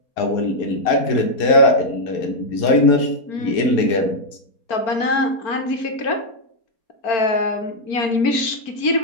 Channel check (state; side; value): late; right; 4.4 ms